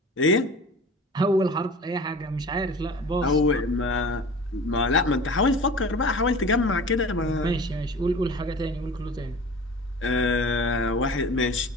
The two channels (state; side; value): normal; both; correlation 0.39